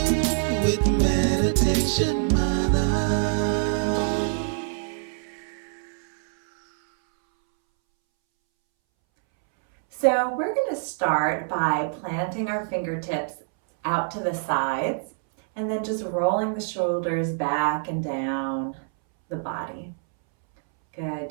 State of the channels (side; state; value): left; silent; 62 dB below the other